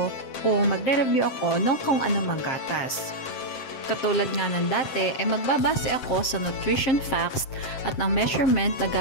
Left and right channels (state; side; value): late; right; 7.6 ms